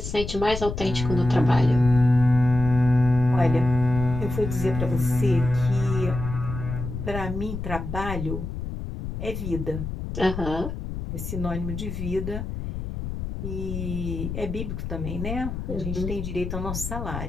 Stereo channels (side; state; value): left; noise; rumble, 6 dB below the sound